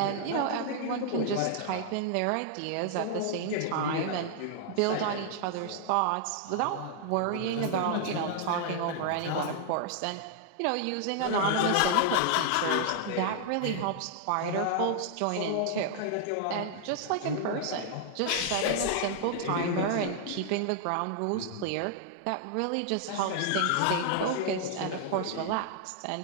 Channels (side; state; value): both; different; correlation -0.01